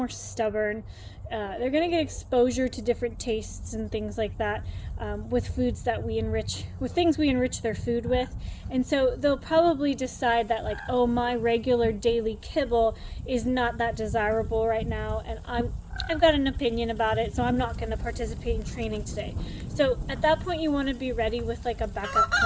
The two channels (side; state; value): both; identical; correlation 1.00